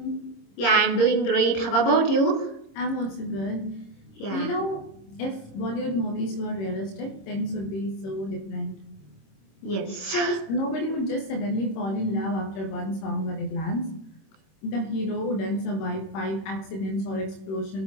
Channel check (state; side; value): late; right; 26 ms